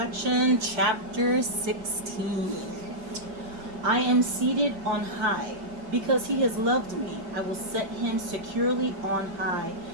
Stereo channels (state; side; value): late; left; 6.1 ms